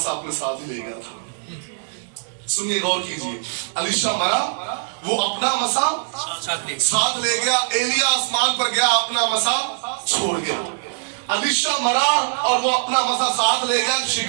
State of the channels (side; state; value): left; silent; digital silence